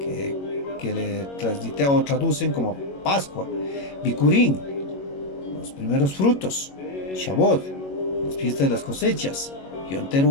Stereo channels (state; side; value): late; right; 21 ms